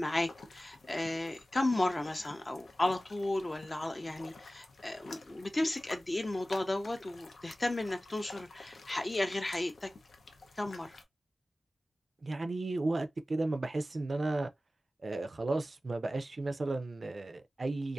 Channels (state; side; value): normal; both; correlation 0.96